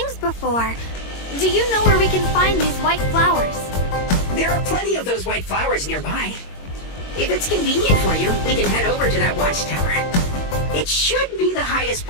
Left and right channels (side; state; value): right; late; 22 ms